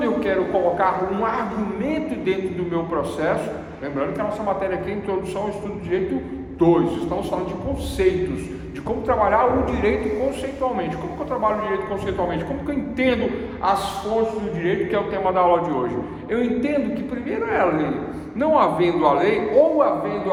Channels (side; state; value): both; identical; correlation 1.00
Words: eu quero colocar um argumento dentro do meu processo, lembrando que a nossa matéria aqui é Introdução ao Estudo de Direito 2, estamos falando de conceitos, de como trabalhar o direito conceitualmente. Como que eu trabalho o direito conceitualmente? Como que eu entendo as fontes do direito, que é o tema da aula de hoje? Eu entendo que primeiro é a lei. Não havendo a lei, ou havendo